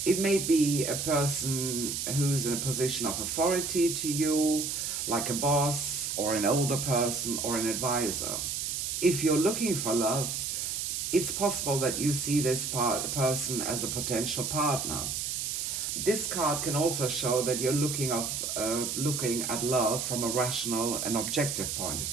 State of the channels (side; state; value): right; noise; hiss, 2 dB below the sound